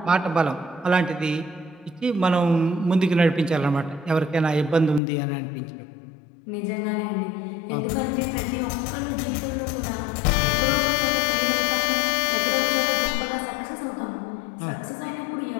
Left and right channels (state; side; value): drops out; right; at 5.0 s